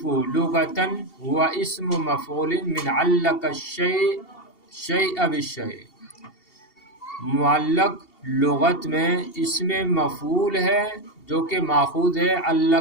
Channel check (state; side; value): late; right; 2.7 ms